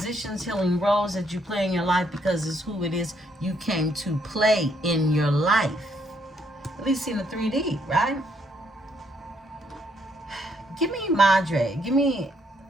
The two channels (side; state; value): both; normal; correlation 0.71